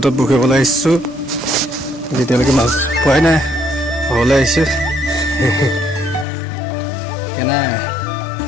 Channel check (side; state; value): right; drops out; at 6.2 s